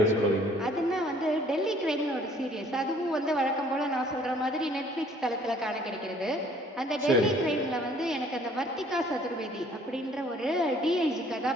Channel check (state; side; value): normal; both; correlation 0.58